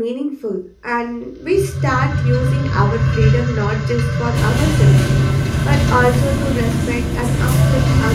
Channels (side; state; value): both; identical; correlation 1.00